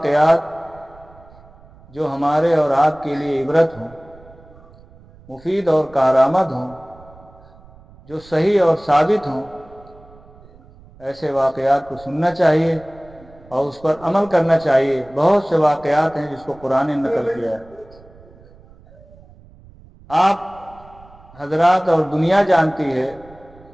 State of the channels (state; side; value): noise; right; rumble, 24 dB below the sound